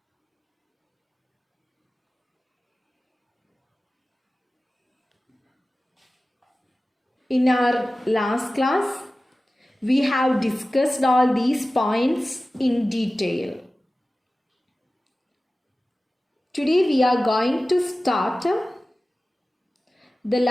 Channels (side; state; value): both; normal; correlation 0.96